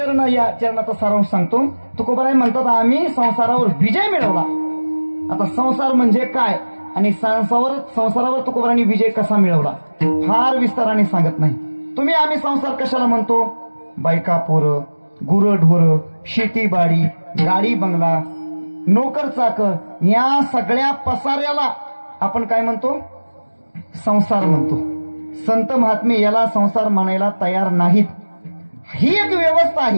या चरणाचा सारांश सांगतो. तुकोबाराय म्हणतात आम्ही संसारावर विजय मिळवला. आता संसार म्हणजे काय आणि संसारावर तुकोबारांनी विजय कसा मिळवला फार विस्ताराने सांगत नाही. तुम्ही आम्ही संसार कशाला म्हणतो? बायका पोरं, गुरं ढोरं, शेतीबाडी, गाडी बंगला, नोकर चाकर या सगळ्या पसाऱ्याला आपण काय म्हणतो? संसार म्हणतो. संत महात्मे याला संसार म्हणायला तयार नाहीत. ही एक व्यवस्था आहे.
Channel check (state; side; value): inverted; both; correlation -1.00